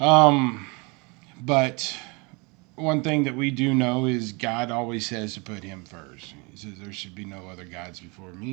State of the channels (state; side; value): quieter; left; 28.9 dB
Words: Um, but one thing that we do know is God always says to put Him first. He says there should be no other gods before